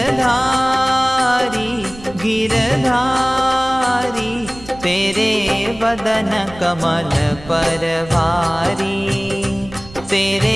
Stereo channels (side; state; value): right; noise; rumble, 18 dB below the sound